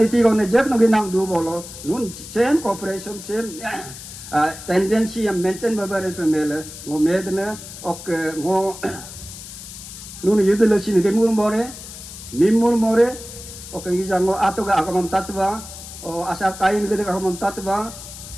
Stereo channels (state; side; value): noise; left; hiss, 13 dB below the sound